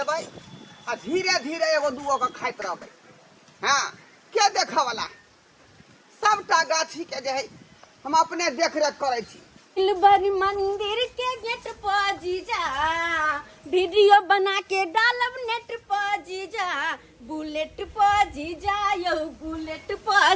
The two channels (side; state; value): both; identical; correlation 1.00